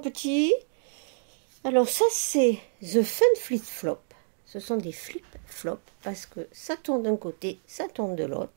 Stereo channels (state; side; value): silent; left; digital silence